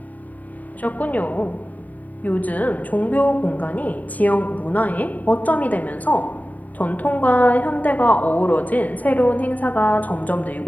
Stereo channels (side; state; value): right; late; 0.075 ms